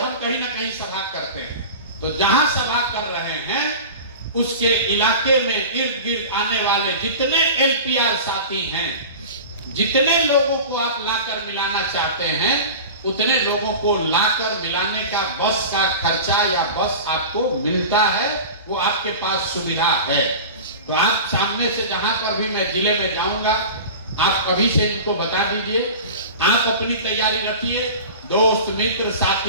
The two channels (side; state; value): both; inverted; correlation -0.34